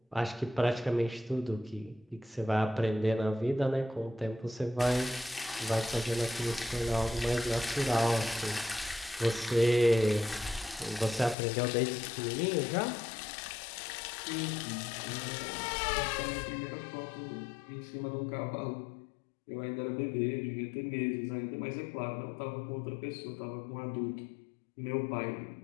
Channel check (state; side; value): drops out; right; at 11.4 s